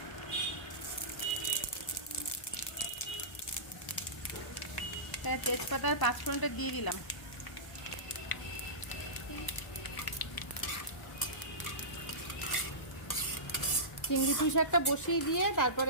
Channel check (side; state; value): right; late; 1.0 ms